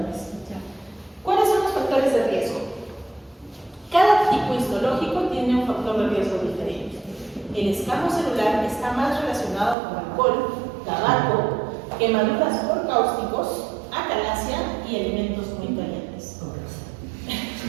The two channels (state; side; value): drops out; left; at 9.8 s